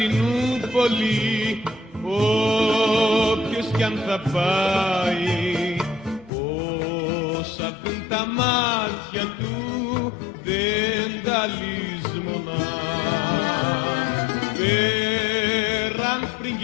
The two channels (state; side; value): drops out; right; at 6.3 s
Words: όποιος κι αν θα πάει, όσα δουν τα μάτια του δεν τα λησμονά. Πέραν